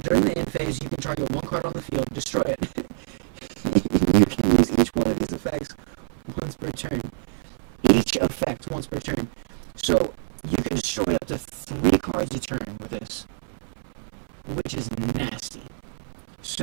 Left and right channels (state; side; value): silent; left; digital silence